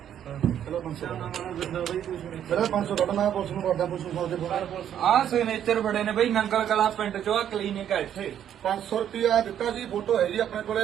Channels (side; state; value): left; quieter; 9.9 dB